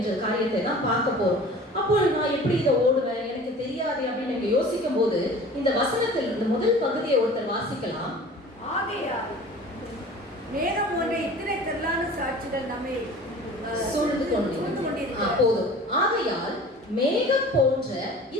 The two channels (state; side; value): normal; both; correlation 0.42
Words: காரியத்தை தான் பார்க்க போறோம். அப்போ நான் எப்படி இதை ஓடுவேன், எனக்கு தெரியாது அப்படின்னு யோசிக்கும் போது இந்த வசனத்தில் இந்த முதல் பகுதியை ஒருத்தர் வாசிக்கலாம். ஆகையால் மேகம் போன்ற இத்தனை திரளான சாட்சிகள் நம்மை சூழ்ந்து கொண்டிருக்கிறது. போதும். ஆகையால் மேகம் போன்ற